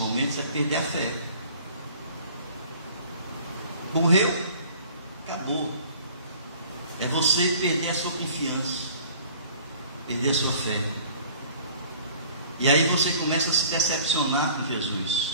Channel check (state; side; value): inverted; both; correlation -0.50